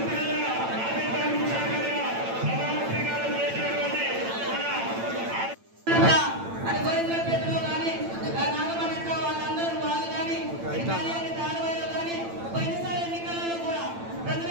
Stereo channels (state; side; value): late; left; 8.9 ms